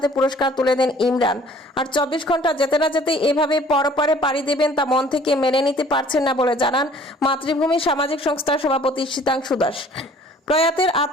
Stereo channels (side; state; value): both; normal; correlation 0.53